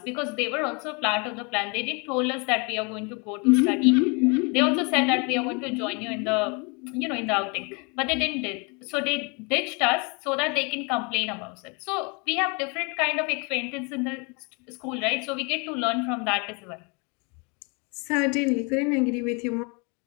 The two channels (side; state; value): right; quieter; 31.9 dB